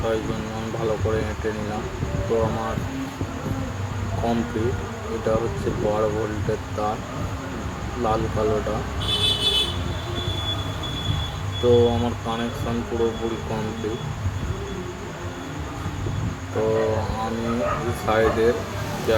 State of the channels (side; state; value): both; identical; correlation 1.00